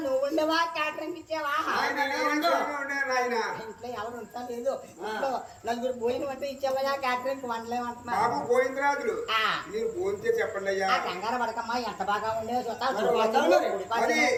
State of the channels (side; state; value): both; identical; correlation 1.00